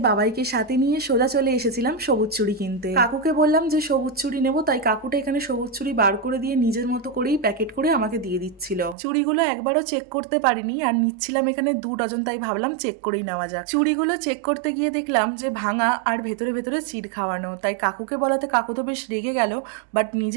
বাবাইকে সাথে নিয়ে সোজা চলে এসেছিলাম সবুজ চুড়ি কিনতে। কাকুকে বললাম যে সবুজ চুড়ি নেবো, তাই কাকুটা এখানে সবুজ চুড়ি বার করে দিয়ে নিজের মতো করেই প্যাকেট করে আমাকে দিয়ে দিচ্ছিল। চুড়িগুলো একবারও চেক করতে পারিনি, আর নিচ্ছিলাম এখানে 2 ডজন, তাই ভাবলাম চেক করেই নেওয়া যাক। চুড়িগুলো চেক করতে গিয়ে দেখলাম যে ভাঙা আর ভেতরে ভেতরে চিড় খাওয়ানো, তাই কাকুকে বলাতে কাকু তো বেশ রেগে গেল। বাট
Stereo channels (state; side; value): drops out; left; at 9.0 s